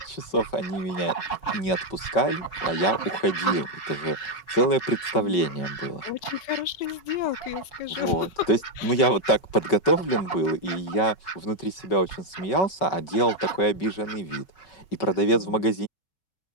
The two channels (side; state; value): right; late; 5.3 ms